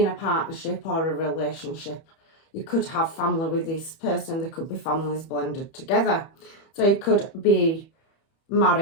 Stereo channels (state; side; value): late; right; 31 ms